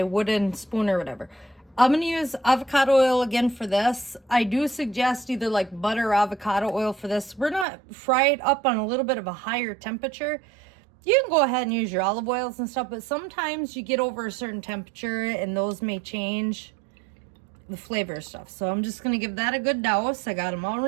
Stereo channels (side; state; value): left; drops out; at 7.7 s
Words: wooden spoon or whatever. I'm going to use avocado oil again for this. I do suggest either like butter or avocado oil for this. We're not fried up on a little bit of a higher temperature. You can go ahead and use your olive oils and stuff, but sometimes you get over a certain temperature and those may change the flavor of stuff. So I'm just going to give that a good douse. I got them all